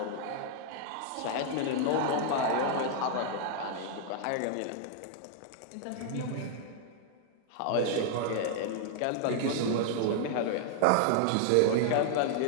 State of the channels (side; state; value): both; different; correlation -0.01